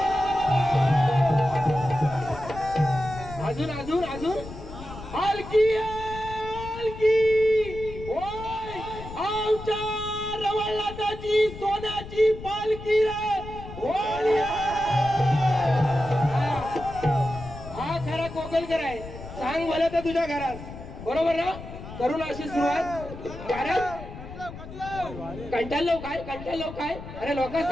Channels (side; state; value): left; noise; rumble, 12 dB below the sound